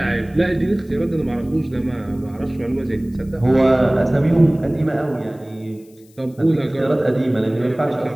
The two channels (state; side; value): noise; left; hiss, 30 dB below the sound